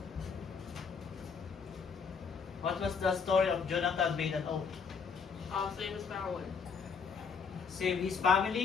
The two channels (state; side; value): quieter; right; 5.8 dB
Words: What was the story of Jonathan made an oath? Same as Farrell. Save his